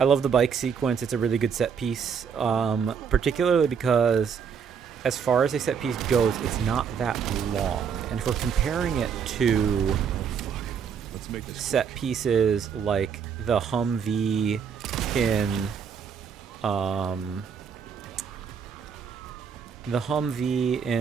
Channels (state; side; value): quieter; left; 6.9 dB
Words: the bike sequence. It's a really good set piece, particularly because as far as a set piece goes, it's not that long. And if we're comparing it to set pieces like the Humvee in